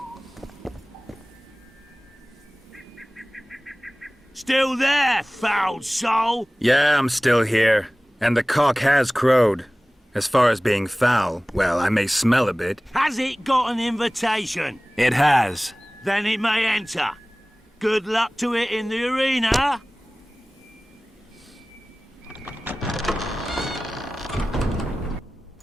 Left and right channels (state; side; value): normal; both; correlation 0.98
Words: Still there, foul soul? Yeah, I'm still here. And the cock has crowed. As far as being foul, well, I may smell a bit. Has it got an invitation? It has. Then it may enter. Good luck to it in the arena.